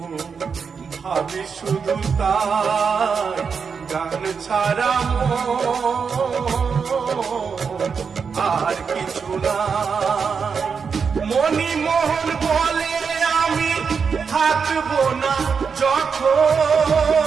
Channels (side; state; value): left; quieter; 5.9 dB